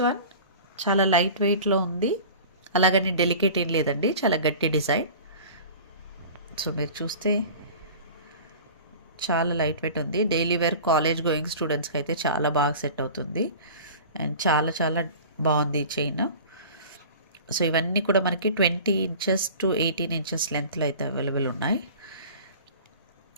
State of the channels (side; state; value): both; inverted; correlation -0.40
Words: వన్ చాలా లైట్ వెయిట్లో ఉంది, అలాగని డెలికేట్ ఏం లేదండి, చాలా గట్టి డిజైన్. సో మీరు చూస్తే చాలా లైట్ వెయిట్ ఉంది. డైలీ వేర్ కాలేజ్ గోయింగ్ స్టూడెంట్స్కి అయితే చాలా బాగా సెట్ అవుతుంది. అండ్ చాలా చాలా బాగుంది ఈ చైన్. సో ఇవన్నీ కూడా మనకి 20 ఇంచెస్ టు 18 ఇంచెస్ లెంత్లో అయితే అవైలబుల్ ఉన్నాయి.